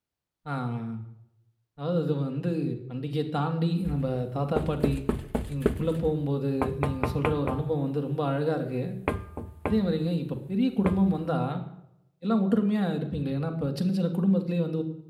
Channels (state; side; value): identical; both; correlation 1.00